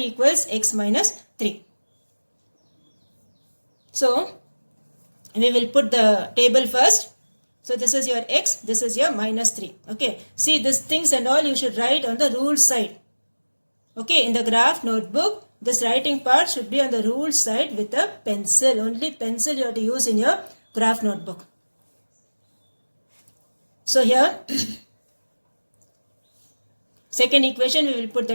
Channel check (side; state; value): both; inverted; correlation -1.00